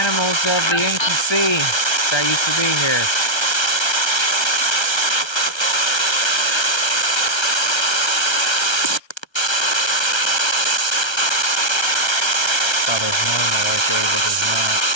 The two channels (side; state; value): right; late; 1.3 ms